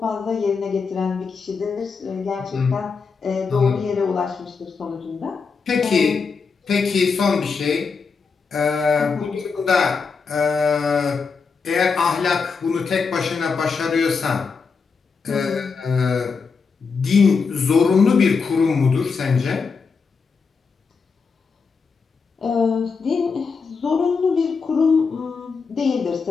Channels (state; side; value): quieter; right; 5.2 dB